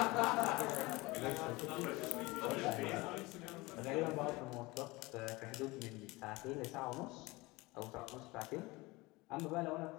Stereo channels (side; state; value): right; quieter; 22.5 dB